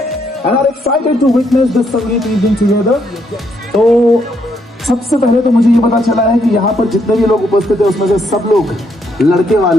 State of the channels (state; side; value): normal; both; correlation 0.74